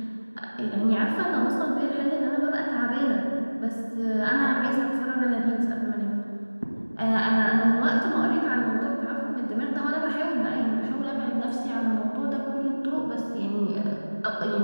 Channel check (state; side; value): inverted; both; correlation -1.00